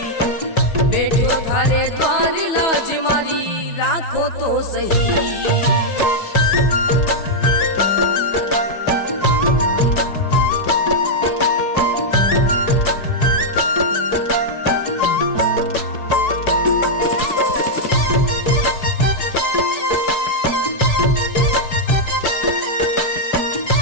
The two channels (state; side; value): late; right; 4.7 ms